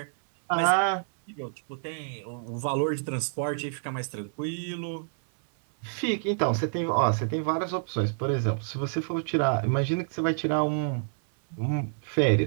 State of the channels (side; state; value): left; silent; 59 dB below the other